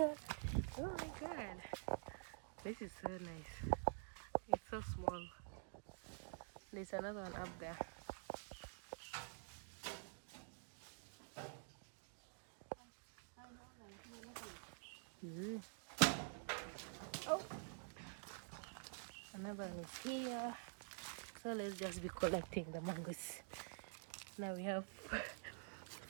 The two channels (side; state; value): left; silent; digital silence